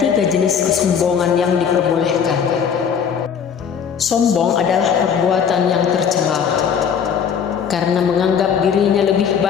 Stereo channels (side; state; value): right; quieter; 7.3 dB